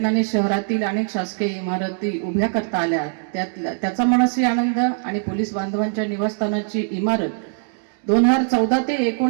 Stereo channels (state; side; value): silent; left; 60 dB below the other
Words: शहरातील अनेक शासकीय इमारती उभ्या करता आल्या. त्याचा मनस्वी आनंद आणि पोलीस बांधवांच्या निवासस्थानाची इमारत 2014 ते